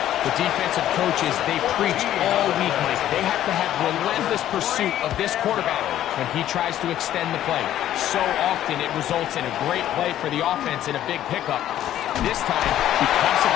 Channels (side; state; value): right; quieter; 12.2 dB